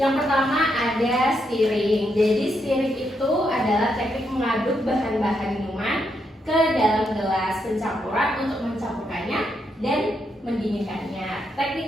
pertama ada stirring. Jadi stirring itu adalah teknik mengaduk bahan-bahan minuman ke dalam gelas pencampuran untuk mencampurkannya dan mendinginkannya. Teknik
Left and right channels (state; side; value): normal; both; correlation 0.80